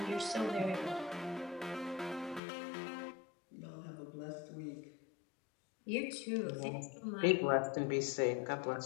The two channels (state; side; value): drops out; right; at 2.4 s